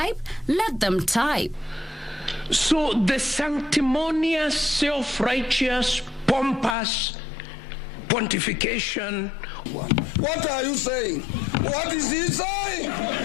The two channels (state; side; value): drops out; right; at 6.8 s